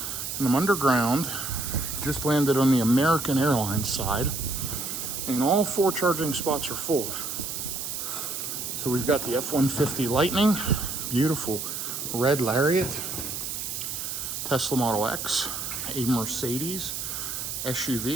I'm underground. Just landed on the American Airlines side, and all 4 charging spots are full. So we've got the F-150 Lightning, beautiful red Lariat, Tesla Model X, a Mercedes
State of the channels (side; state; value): right; noise; hiss, 5 dB below the sound